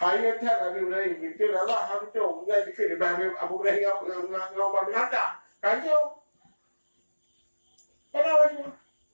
Nabi Ibrahim dikir Allah habis tu mengenai dikir di Abu Ibrahim dengan Umar bin Khattab. Kacau. Kenapa cuma?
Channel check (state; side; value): inverted; both; correlation -1.00